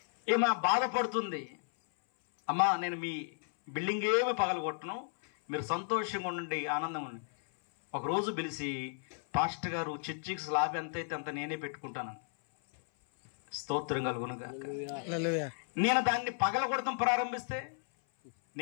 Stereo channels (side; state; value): right; silent; 55 dB below the other